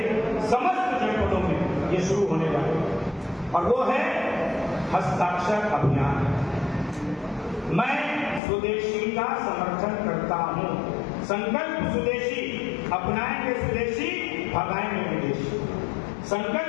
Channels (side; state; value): right; drops out; at 8.4 s